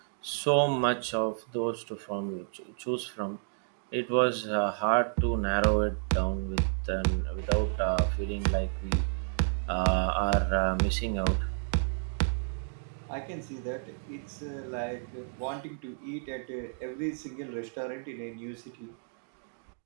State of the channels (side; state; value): left; silent; digital silence